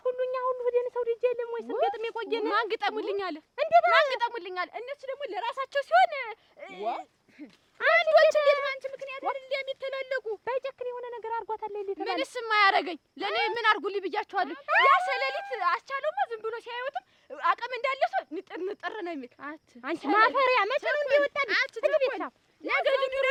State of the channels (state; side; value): identical; both; correlation 1.00